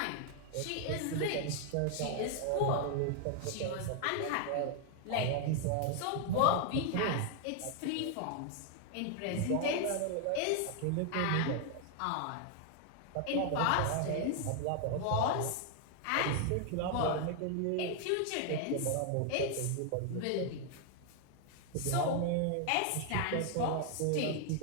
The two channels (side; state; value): both; different; correlation 0.00